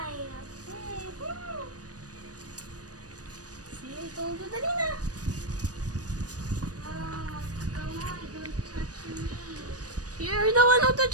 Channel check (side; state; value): left; late; 0.68 ms